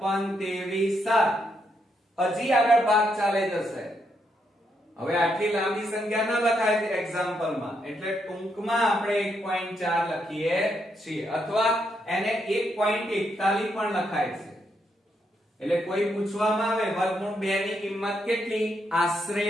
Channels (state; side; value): normal; both; correlation 0.79